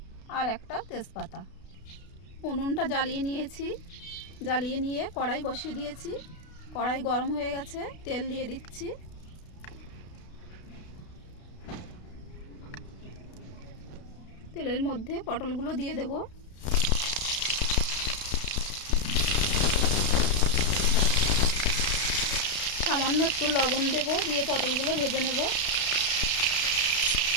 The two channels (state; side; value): late; right; 32 ms